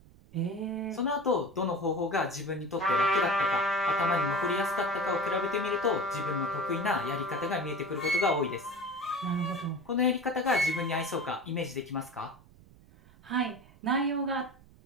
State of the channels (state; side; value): noise; right; rumble, 25 dB below the sound